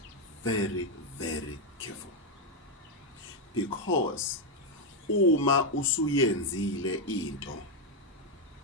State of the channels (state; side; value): normal; both; correlation 0.03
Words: very careful. Because uma usuyenzile into,